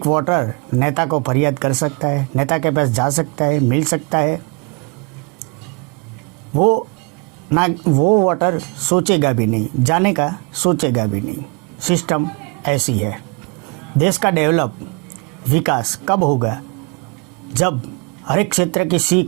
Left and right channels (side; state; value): left; quieter; 30.7 dB